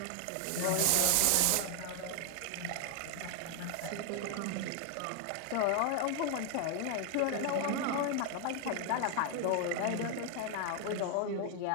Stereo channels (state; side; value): different; both; correlation 0.00